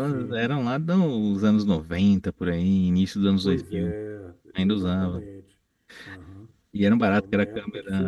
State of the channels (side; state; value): both; identical; correlation 1.00